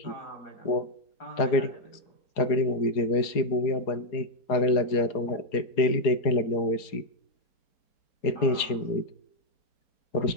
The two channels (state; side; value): late; right; 4.7 ms